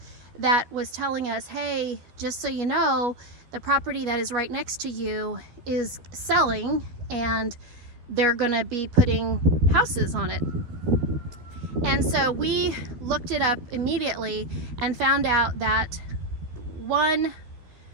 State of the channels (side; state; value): left; late; 12 ms